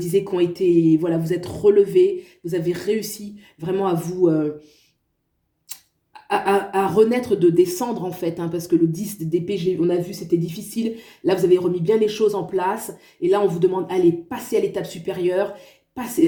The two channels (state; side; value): identical; both; correlation 1.00